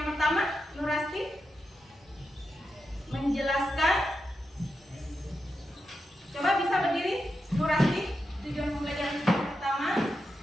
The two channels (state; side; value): normal; both; correlation 0.88